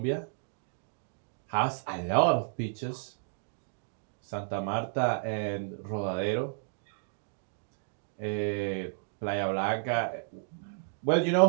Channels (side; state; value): left; silent; digital silence